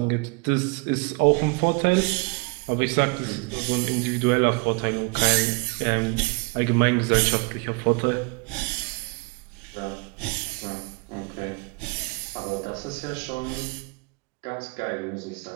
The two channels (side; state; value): left; quieter; 30.9 dB